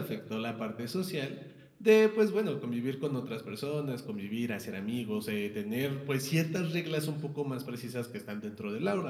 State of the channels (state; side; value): identical; both; correlation 1.00